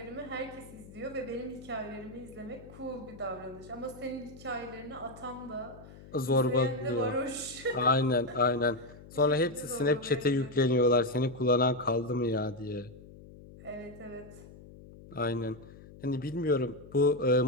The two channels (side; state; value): left; noise; hum, 18 dB below the sound